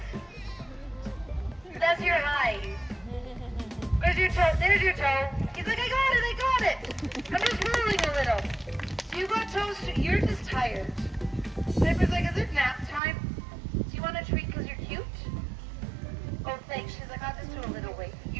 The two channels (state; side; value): drops out; left; at 13.0 s